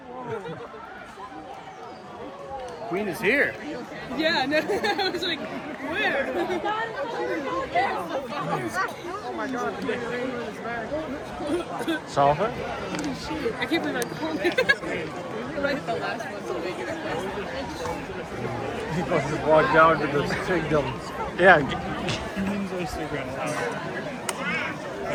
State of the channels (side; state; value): both; identical; correlation 1.00